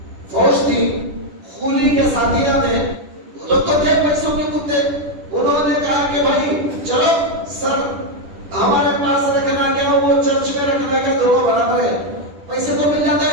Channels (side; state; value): left; late; 10 ms